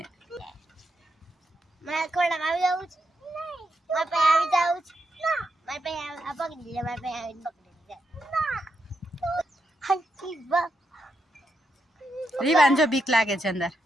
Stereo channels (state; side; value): normal; both; correlation 0.83